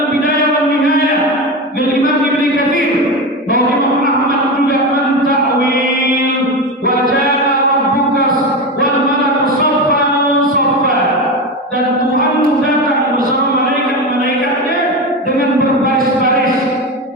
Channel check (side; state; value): both; normal; correlation 0.20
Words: wal Nihayah bil Imam Ibnu Katsir bahwa Imam Ahmad juga mentakwil wa jaa rabbuka wal malaku saffan saffa, dan Tuhan datang bersama malaikat-malaikatnya dengan berbaris-baris.